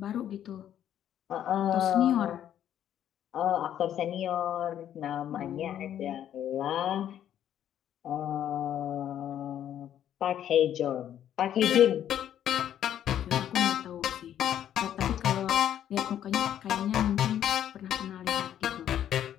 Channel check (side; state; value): right; quieter; 10.6 dB